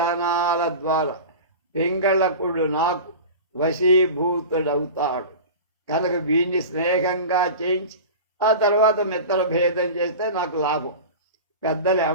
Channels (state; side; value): inverted; both; correlation -0.32